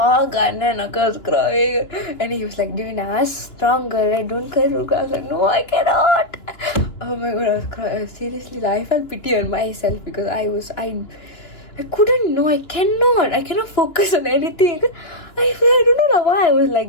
and Akka was crying. And he was like, Divina, strong girl, right? Don't cry. I was like, no, I cannot. Oh my god, I was crying. Seriously, I felt pity on myself because I couldn't know. I cannot focus on anything. I don't know why I was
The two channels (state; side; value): late; right; 2.9 ms